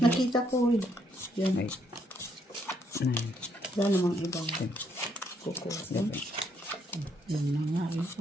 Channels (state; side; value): normal; both; correlation 0.72